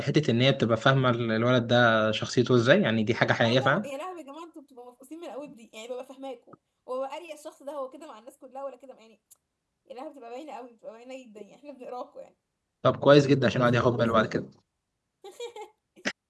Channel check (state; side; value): identical; both; correlation 1.00